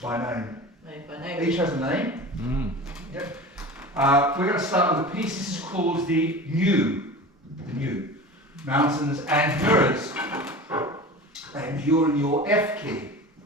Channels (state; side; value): normal; both; correlation 0.34